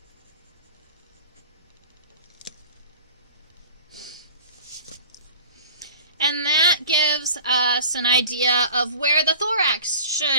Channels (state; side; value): inverted; both; correlation -0.42